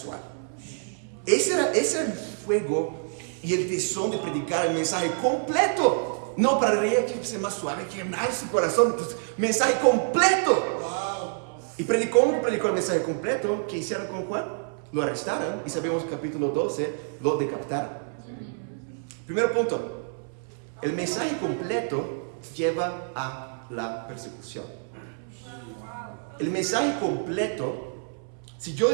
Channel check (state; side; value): silent; left; 60 dB below the other